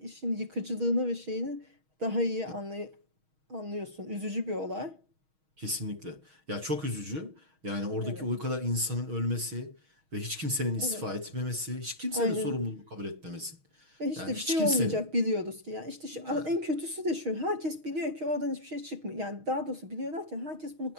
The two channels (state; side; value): late; left; 6.3 ms